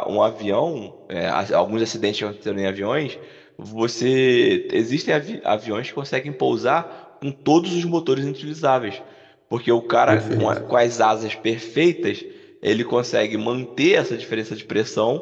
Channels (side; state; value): both; identical; correlation 1.00